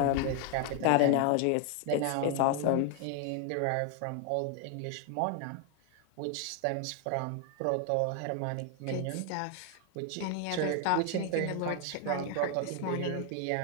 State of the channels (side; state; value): both; different; correlation 0.00